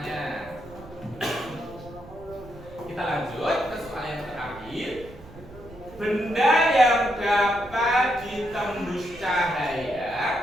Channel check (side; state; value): right; noise; rumble, 19 dB below the sound